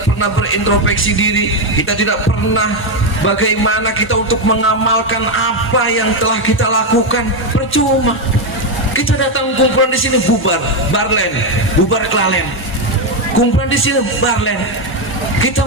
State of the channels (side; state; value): both; normal; correlation 0.06